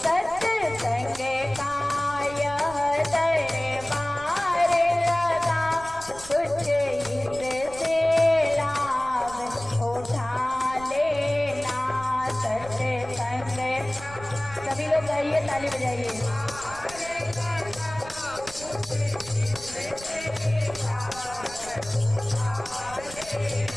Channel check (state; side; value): noise; right; rumble, 17 dB below the sound